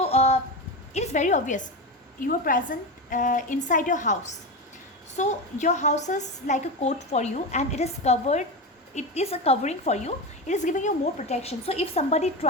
it is very obvious. You are present inside your house. So your house is like a coat for you, and it is covered it is a covering for you. It is giving you more protection. So if somebody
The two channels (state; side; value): normal; both; correlation 0.18